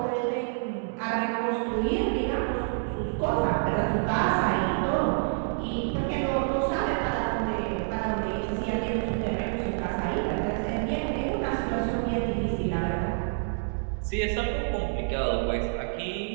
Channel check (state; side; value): silent; left; digital silence